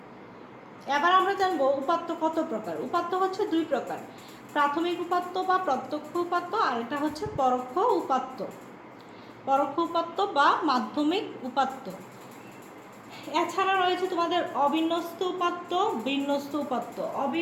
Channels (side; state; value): both; identical; correlation 1.00